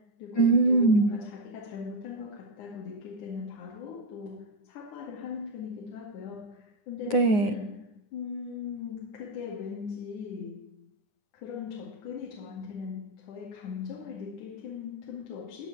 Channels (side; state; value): right; late; 9.7 ms